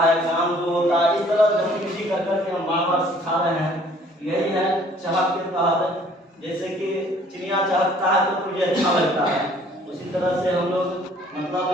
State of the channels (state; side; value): normal; both; correlation 0.56